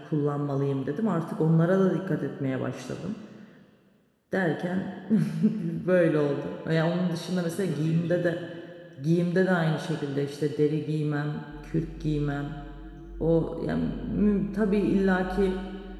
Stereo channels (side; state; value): both; identical; correlation 1.00